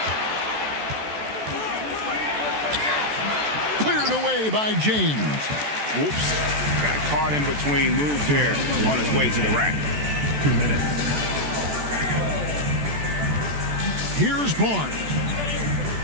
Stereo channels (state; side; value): late; left; 14 ms